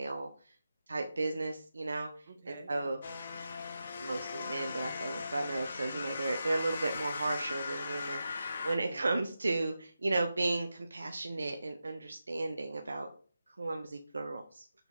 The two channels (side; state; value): both; inverted; correlation -0.90